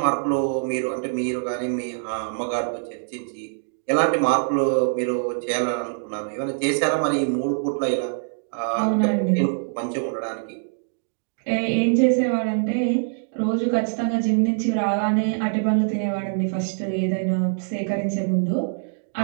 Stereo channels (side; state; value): left; silent; digital silence